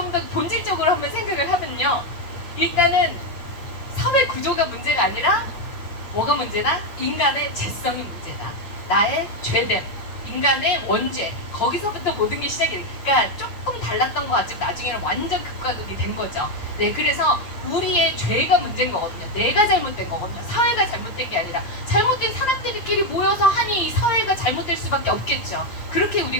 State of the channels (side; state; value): right; late; 8.9 ms